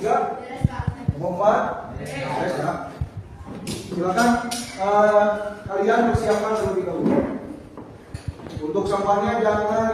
Kelompok 4? Beres ya. Silakan kalian persiapkan terlebih dahulu. Untuk sampahnya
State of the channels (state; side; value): identical; both; correlation 1.00